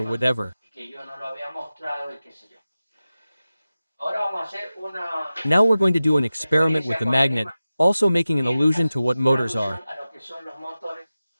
whatever. y que yo no lo había mostrado y qué sé yo. Ahora vamos a hacer una Now we're going to do an experiment with referencia the con el magnet, also making an allusion to what una motors alusión are. a lo que son los motores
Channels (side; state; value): both; inverted; correlation -0.95